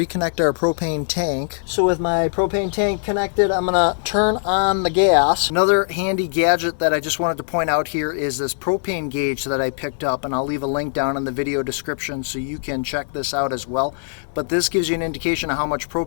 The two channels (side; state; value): right; silent; digital silence